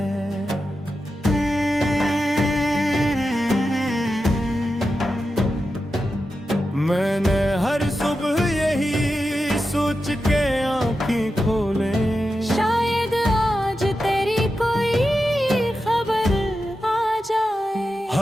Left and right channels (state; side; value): normal; both; correlation 0.90